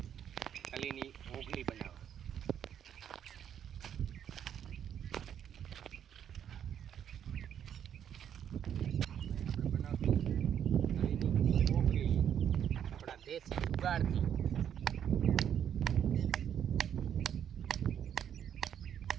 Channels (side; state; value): left; quieter; 9.2 dB